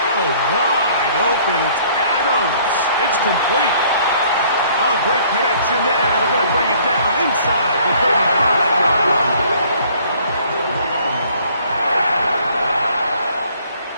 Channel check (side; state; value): both; inverted; correlation -0.58